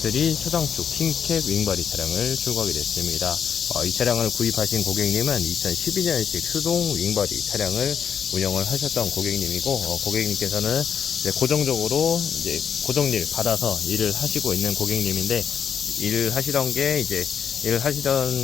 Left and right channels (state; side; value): quieter; right; 7.7 dB